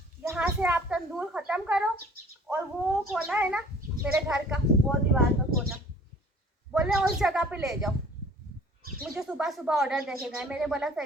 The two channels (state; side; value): normal; both; correlation 0.52